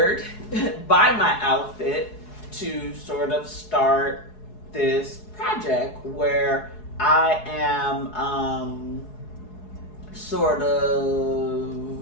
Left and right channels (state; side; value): late; right; 4.7 ms